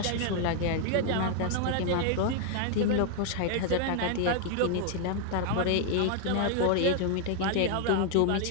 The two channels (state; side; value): different; both; correlation 0.00